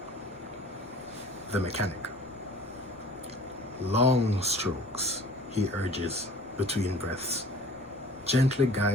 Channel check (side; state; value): left; noise; rumble, 28 dB below the sound